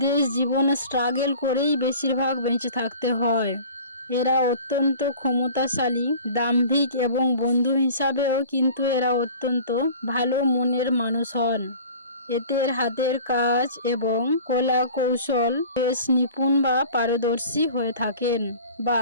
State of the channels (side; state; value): both; inverted; correlation -0.43